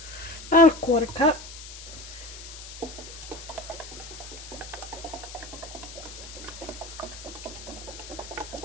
About a 1/4 cup.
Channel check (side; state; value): left; noise; hiss, 13 dB below the sound